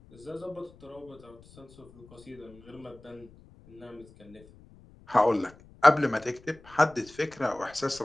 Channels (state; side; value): noise; left; rumble, 24 dB below the sound